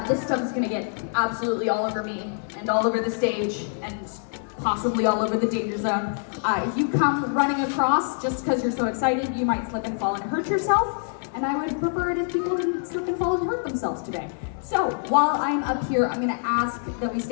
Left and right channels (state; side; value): silent; right; digital silence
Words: This stuff is gonna get absolutely all over me and all over the stage and possibly all over the danger zone. If you come running across just because you're so excited, you might slip and fall and hurt yourself. And I would prefer it if people didn't slip and fall and hurt themselves today. So while I'm up here, I'm gonna ask that we